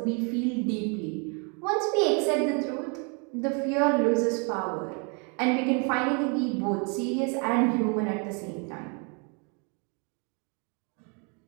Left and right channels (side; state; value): left; quieter; 35.2 dB